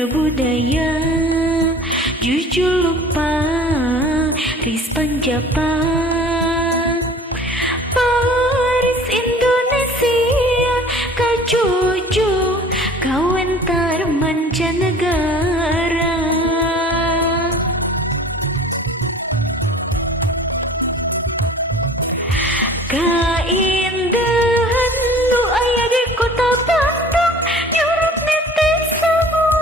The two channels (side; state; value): both; normal; correlation 0.45